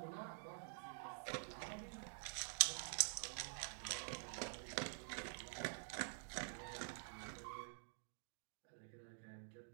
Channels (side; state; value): left; silent; digital silence